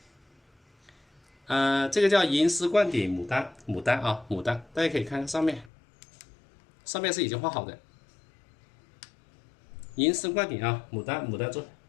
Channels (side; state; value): right; drops out; at 5.7 s